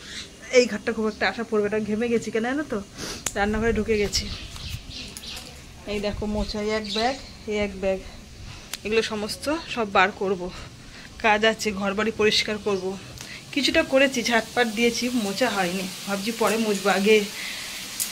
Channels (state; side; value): identical; both; correlation 1.00